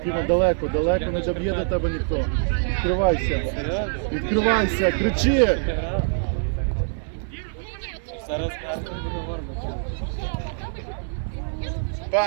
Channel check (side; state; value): left; silent; 56 dB below the other